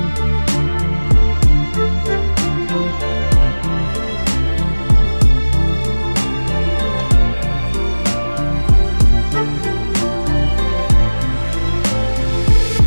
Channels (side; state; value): both; inverted; correlation -1.00